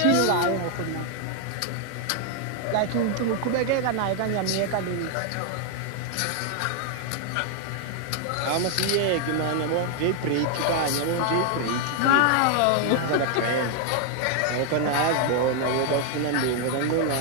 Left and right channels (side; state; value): both; different; correlation 0.00